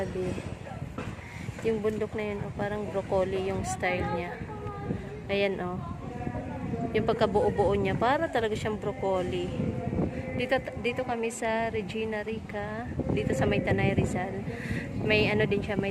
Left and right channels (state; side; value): identical; both; correlation 1.00